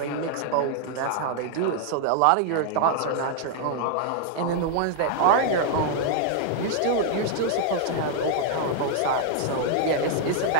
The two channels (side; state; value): both; different; correlation 0.00